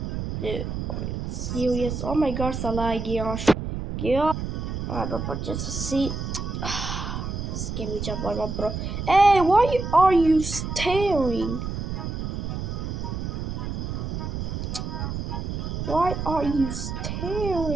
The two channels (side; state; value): right; noise; rumble, 4 dB below the sound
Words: Dude, serious? Oh my gosh, gosh. But just to see. Give me jump on, bro. Hey, why are you staring? Why are you